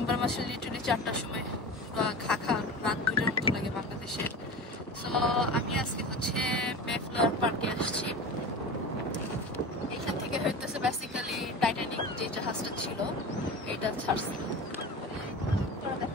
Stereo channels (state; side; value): normal; both; correlation 0.31